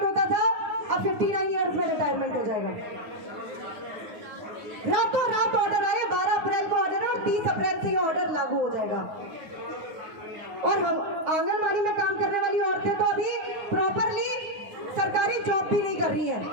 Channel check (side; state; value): left; late; 9.6 ms